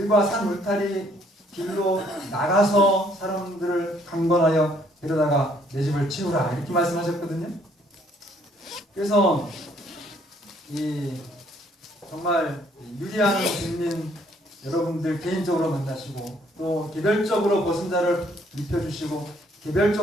산 울타리 길로 나가서 사람들을 강권하여 데려다가 내 집을 채우라 이렇게 말씀하셨거든요. 그래서 정말 유리한 국민 여러분들 개인적으로 만나시고 또 개별적으로 벗은 자를 입혀주시고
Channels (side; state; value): both; normal; correlation 0.65